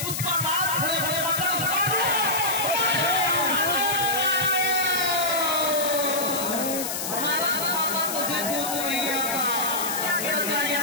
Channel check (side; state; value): left; noise; hiss, 4 dB below the sound